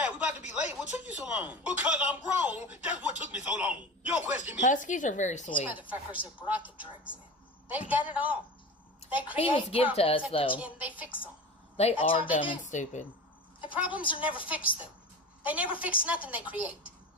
we about to be late. What took you so long? Because I'm grown. That's what took me so long. You don't question me. Huskies are very sweet. These motherfuckers have brought the drugs in. They've done it all. They create he was give to us, though. And they fix them. They are dumb and stupid. The problems are never fixed, though. They never fix nothing they create.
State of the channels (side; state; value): both; normal; correlation 0.31